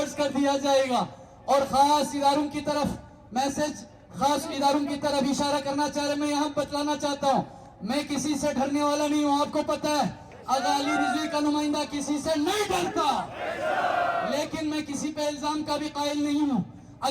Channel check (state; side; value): identical; both; correlation 1.00